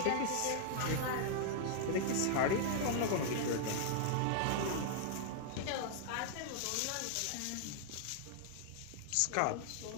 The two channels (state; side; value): different; both; correlation 0.00